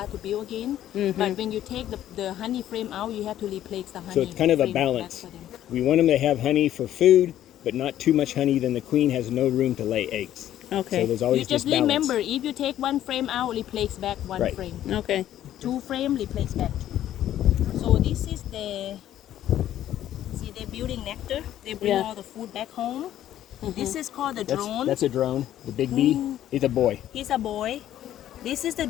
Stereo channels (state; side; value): quieter; right; 12.1 dB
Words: to build again. But when you take the honey frame out, you have to replace the honey. So it's kind of a frame back balance. for them. We want them to have honey for food, but not too much honey. Then the queen has no room to lay eggs. So Okay. there's always You just this balance. remember, if you take one frame out, replace back one Right. frame. Okay. 2 frame, replace back 2. So this is the, see they're building nectar. They bring Yeah. all the food back home. This is called the drone. That's a drone. The big bee. He's a boy. He's a boy. This is the